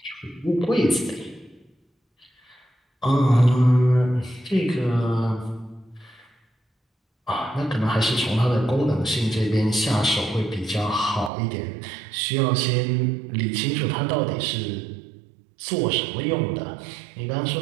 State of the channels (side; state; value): left; drops out; at 11.3 s